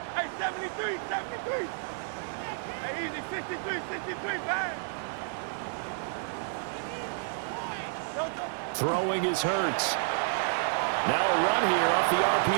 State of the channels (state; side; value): silent; left; digital silence